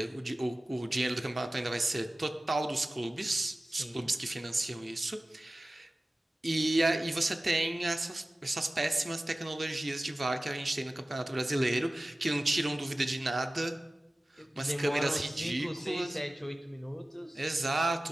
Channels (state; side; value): normal; both; correlation 0.97